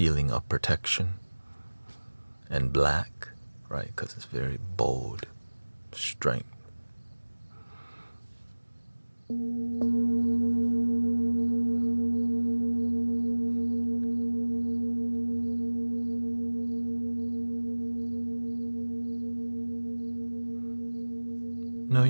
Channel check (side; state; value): both; inverted; correlation -1.00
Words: of protection. And black, right, because it's very bold, strength. No,